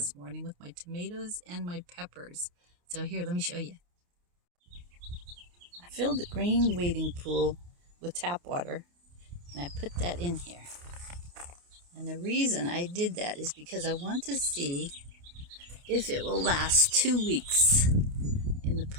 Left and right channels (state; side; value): late; left; 28 ms